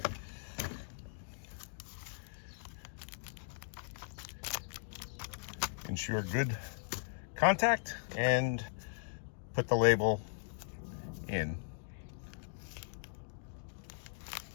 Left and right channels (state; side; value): silent; right; digital silence